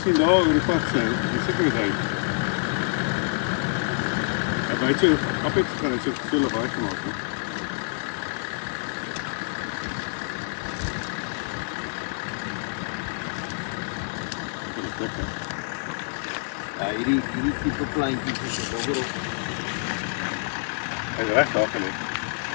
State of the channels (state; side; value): silent; right; 60 dB below the other